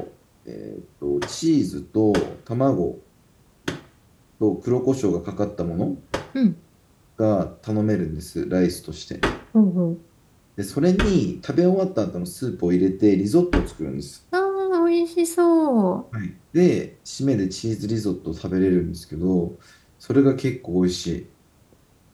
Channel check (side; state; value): both; identical; correlation 1.00